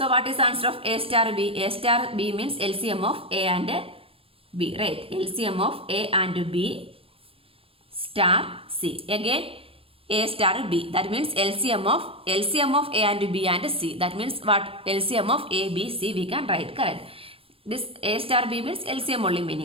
what is the answer of A star B? A star B means LCM of A and B, right? LCM of A and B star C. Again A star B. That means LCM of A and B and C. That means what? LCM of A, B, C we can write. Correct. This A star B means LCM only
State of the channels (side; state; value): left; late; 0.27 ms